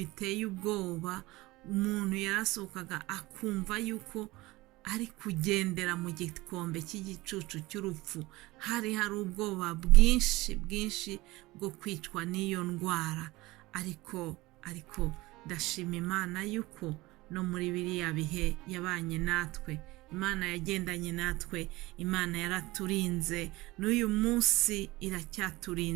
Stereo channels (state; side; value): quieter; left; 20.3 dB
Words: ubwoba, umuntu yarasohokaga akumva yuko ari kugendera mu gikombe cy'igicucu cy'urupfu. Hari ubwoba bwinshi bwo kwicwa n'iyo ndwara, ariko ndashima Imana yuko no muri biriya bihe yabanye natwe. Imana yagendanye natwe, Imana yaraturinze, n'uyu munsi